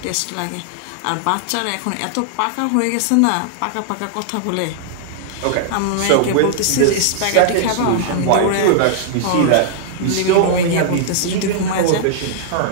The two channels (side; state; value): both; different; correlation -0.01